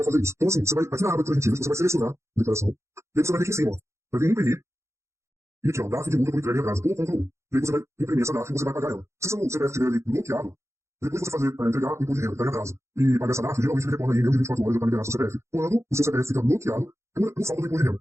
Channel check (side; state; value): left; late; 0.14 ms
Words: fazer isso? Então, assim, você vai, aqui na aba de transmitíveis, você vai selecionar a declaração, e aí você vai vir aqui em cima, ó. Vai vir imprimir, e aqui, ó, DAF de multa por entrega em atraso, ou Ctrl 1. E aí você vai imprimir essa DAF e você vai pagar ela. Se seu CPF estiver ali bloqueado, depois você fazer para entregar o imposto de renda, entrega em atraso, e pagar essa DAF, geralmente ele retorna aí em menos de 24 horas já para liberar seu CPF. Quando o seu CPF fica bloqueado por falta do imposto de renda,